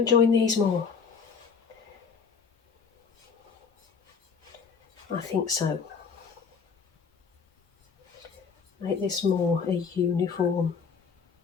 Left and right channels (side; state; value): right; quieter; 5.8 dB